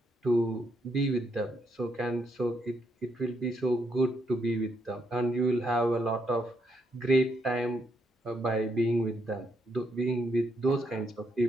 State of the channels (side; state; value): both; normal; correlation 0.76